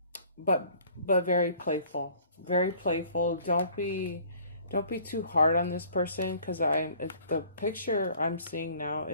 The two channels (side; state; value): both; inverted; correlation -0.54